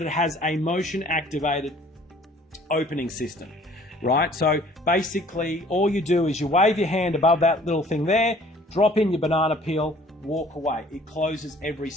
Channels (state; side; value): normal; both; correlation 0.54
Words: it has a motion activated opening system, right? So basically all you do is you wave your hand above that little thing there, drop in your banana peel, walk away. It closes every